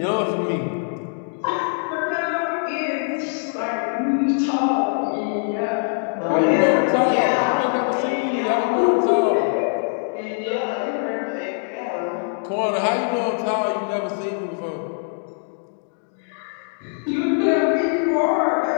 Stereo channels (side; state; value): right; silent; 64 dB below the other